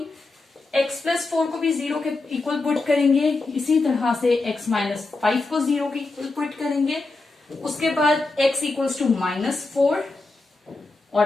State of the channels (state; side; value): quieter; right; 3.4 dB